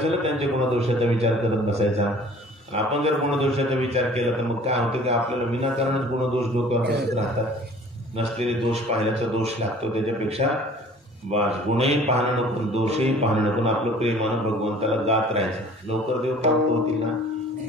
त्यांच्या गुणदोषाचा विचार करत बसायचा. आपण जर गुणदोषाचा विचार केला तर मग काय होतं की आपल्याला विनाकारणच गुणदोष डोक्यावर बसत राहतात. नसलेले दोष पाहिल्याचा दोष लागतो. त्याच्यापेक्षा गुणही पाहणं नको, दोषही पाहणं नको. आपलं प्रेमानं भगवंताला गात राहायचं. लवकर देव प्राप्त होतील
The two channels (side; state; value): both; normal; correlation 0.50